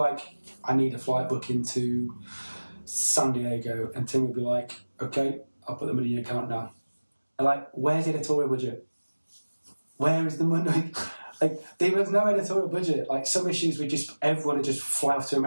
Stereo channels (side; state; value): both; inverted; correlation -1.00